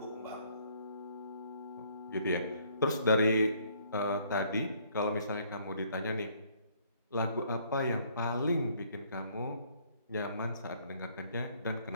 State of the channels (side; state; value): both; inverted; correlation -0.64